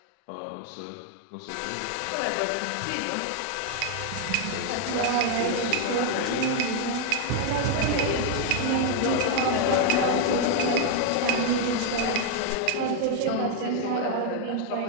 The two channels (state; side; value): different; both; correlation 0.01